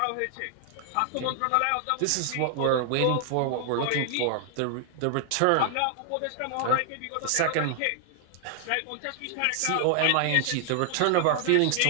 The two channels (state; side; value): different; both; correlation 0.00